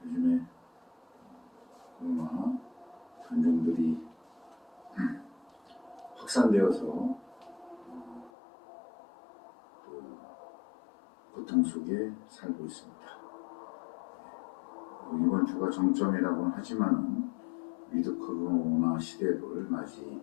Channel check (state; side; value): drops out; right; at 8.3 s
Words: 요즘에 코로나 변종들이 확산되어서 또 고통 속에 살고 있습니다. 이번 주가 정점이라고는 하지만 위드 코로나 시대를